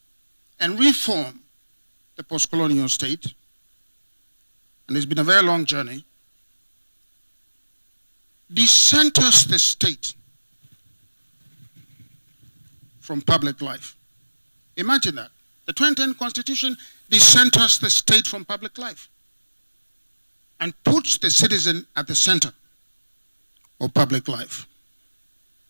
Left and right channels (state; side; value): inverted; both; correlation -1.00